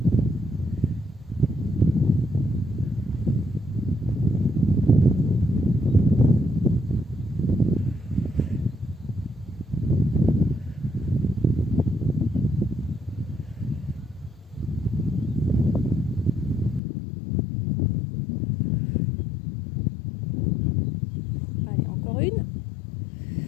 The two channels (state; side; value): drops out; right; at 16.8 s